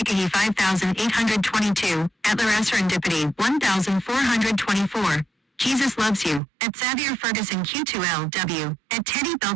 5822, at Laura Serendipity 1424. Jesus loves you, at Xavier Ferguson Q2LW, at Teddy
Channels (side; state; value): left; drops out; at 6.4 s